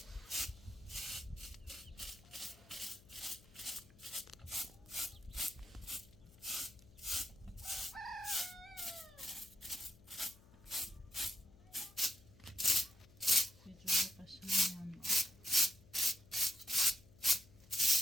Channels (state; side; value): noise; left; hum, 24 dB below the sound